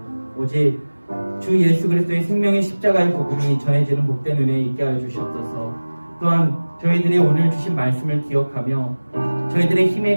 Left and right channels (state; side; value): inverted; both; correlation -1.00